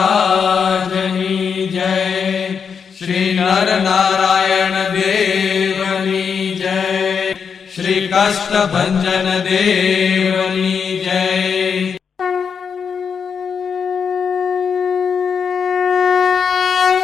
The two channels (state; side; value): quieter; right; 6.5 dB